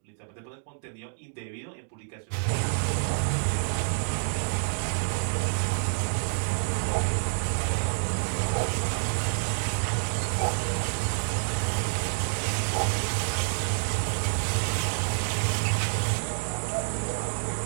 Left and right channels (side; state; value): left; silent; digital silence